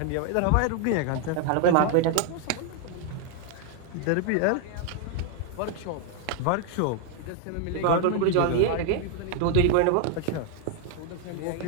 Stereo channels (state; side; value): different; both; correlation 0.00